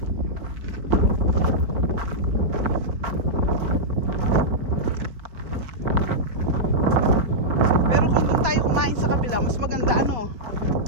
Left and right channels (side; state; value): left; late; 4.5 ms